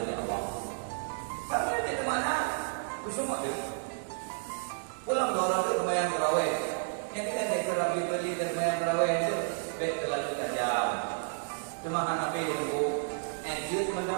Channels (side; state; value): left; silent; 57 dB below the other